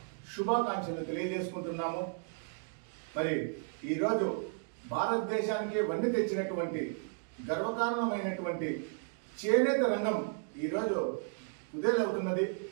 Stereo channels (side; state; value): left; silent; 55 dB below the other